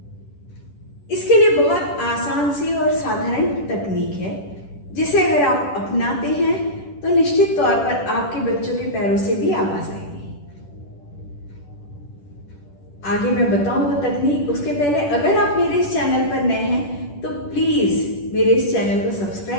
इसके लिए बहुत आसान सी और साधारण तकनीक है जिसे अगर आप अपनाते हैं तो निश्चित तौर पर आपके बच्चों के पैरों से भी आवाज आएगी। आगे मैं बताऊं वो तकनीक, उसके पहले अगर आप मेरे इस चैनल पर नए हैं तो प्लीज मेरे इस चैनल को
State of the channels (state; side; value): late; right; 10 ms